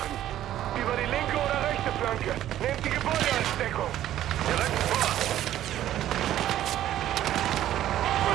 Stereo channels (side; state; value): left; quieter; 12.5 dB